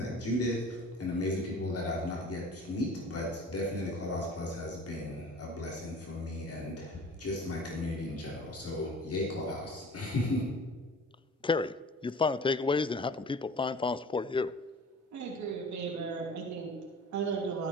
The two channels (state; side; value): normal; both; correlation 0.43